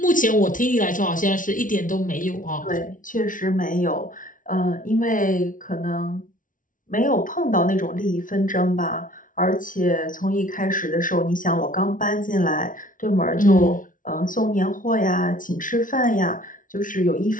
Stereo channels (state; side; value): late; right; 0.38 ms